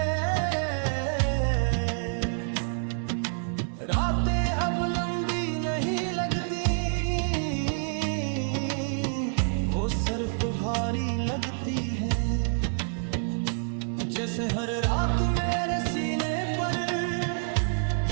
जैसे हर रात मेरे सीने पर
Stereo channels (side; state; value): left; silent; digital silence